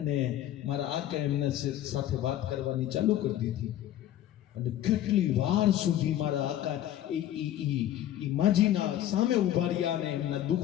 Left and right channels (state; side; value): quieter; right; 12.3 dB